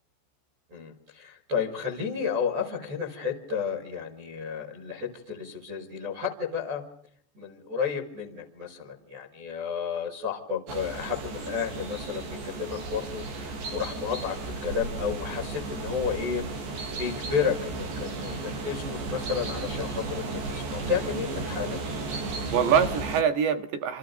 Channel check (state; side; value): late; left; 14 ms